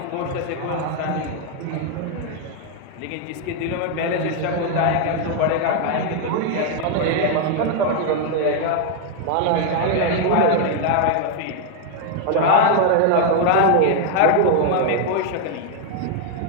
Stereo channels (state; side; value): different; both; correlation 0.01